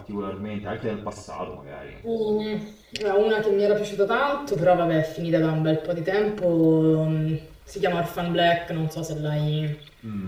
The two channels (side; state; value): both; identical; correlation 1.00